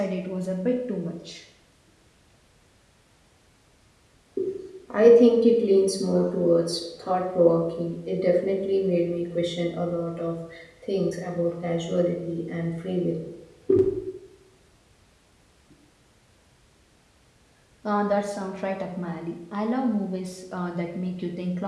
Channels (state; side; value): identical; both; correlation 1.00